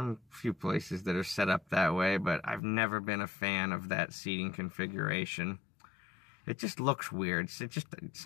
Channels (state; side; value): drops out; right; at 2.6 s